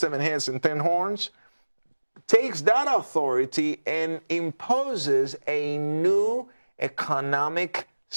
heads and 10 horns, takes that authority and imposes a new economic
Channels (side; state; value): both; inverted; correlation -1.00